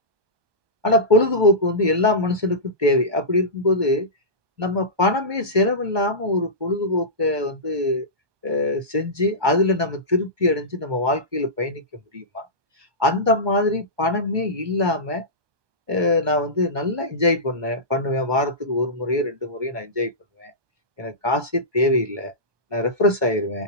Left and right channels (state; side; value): late; left; 1.2 ms